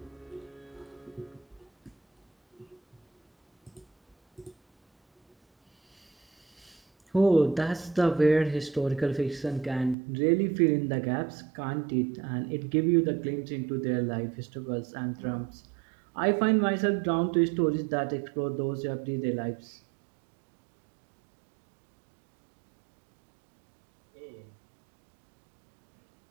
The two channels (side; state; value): left; drops out; at 10.0 s